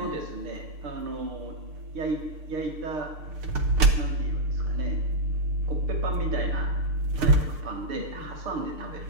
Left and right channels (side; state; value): left; late; 6.7 ms